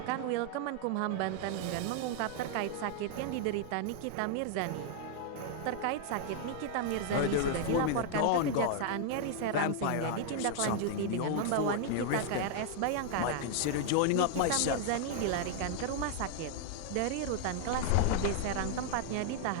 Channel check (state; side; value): different; both; correlation 0.00